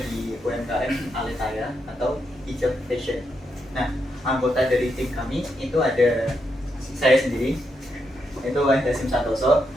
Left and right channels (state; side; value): normal; both; correlation 0.82